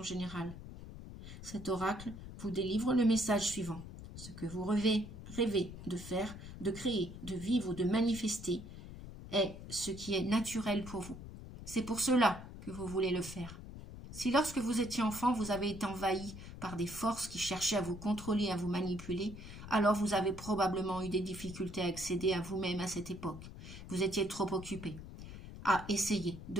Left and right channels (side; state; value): left; noise; rumble, 12 dB below the sound